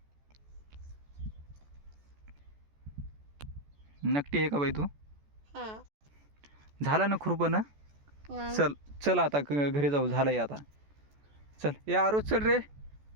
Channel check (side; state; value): left; late; 14 ms